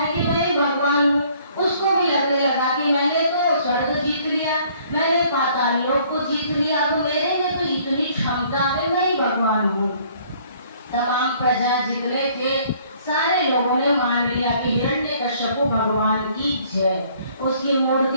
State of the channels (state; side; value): inverted; both; correlation -0.60